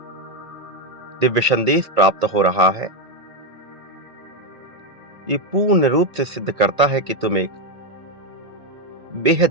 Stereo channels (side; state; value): left; late; 1.8 ms